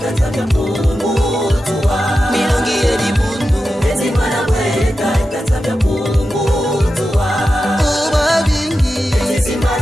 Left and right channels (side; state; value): both; normal; correlation 0.91